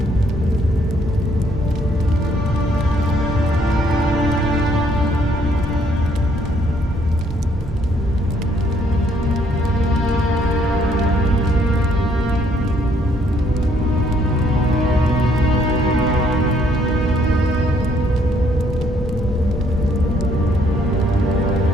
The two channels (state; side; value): normal; both; correlation 0.67